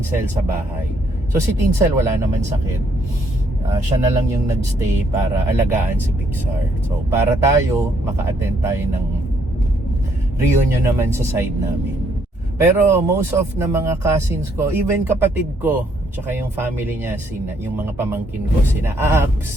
sa bahay. So si Tinsel wala naman sakit. Siya na lang yung nagstay para alagaan si Pixar. So para tayo, maka-attend tayo ng reunion naman sa side namin. Pero most of na mga cousins ko, even kapatid ko, tsaka yung family niya, yung mga pamangkin ko, sina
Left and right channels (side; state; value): both; normal; correlation 0.70